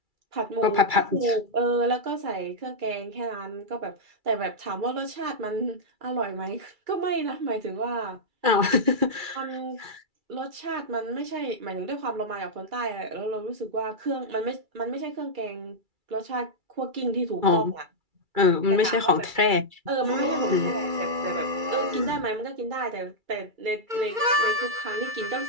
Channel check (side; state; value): left; late; 2.3 ms